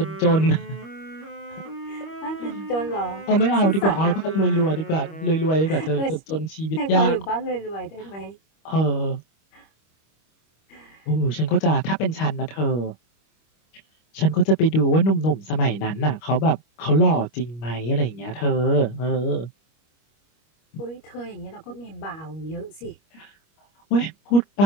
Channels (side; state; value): right; late; 25 ms